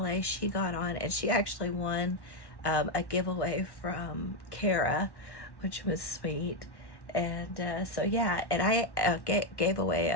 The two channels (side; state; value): right; late; 1.1 ms